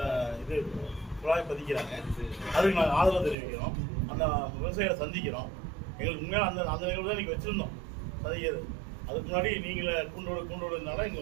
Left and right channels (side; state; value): left; drops out; at 3.4 s